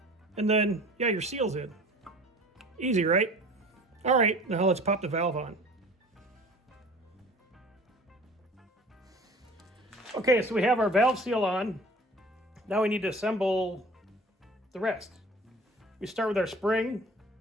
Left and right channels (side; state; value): both; normal; correlation 0.45